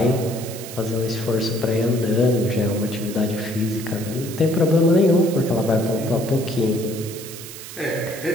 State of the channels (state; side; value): noise; right; hiss, 13 dB below the sound